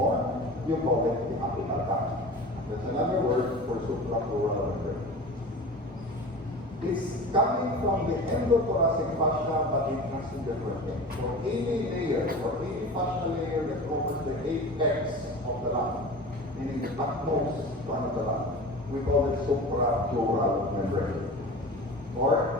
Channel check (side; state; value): both; normal; correlation 0.34